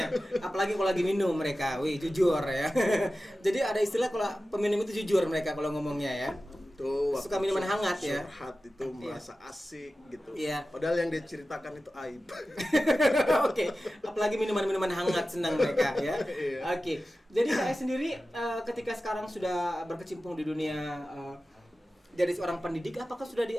Apalagi kalau lagi minum mereka, jujur ya. Jadi ada istilah kalau peminum itu jujur mereka kalau ngomongnya ya. Tuh, suka minuman hangat ya. Surhat itu merasa asik gitu. Iya. Padahal yang dia ceritakan itu aib. Oke. Apalagi minuman hangat senang mereka ya. Oke. Jadi saya sendiri ketika sekarang sudah berkecimpung di dunia jadi seorang pendidik, apakah sudah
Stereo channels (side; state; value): both; normal; correlation 0.94